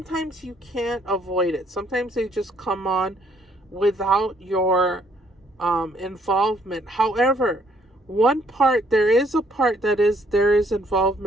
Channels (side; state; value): both; normal; correlation 0.66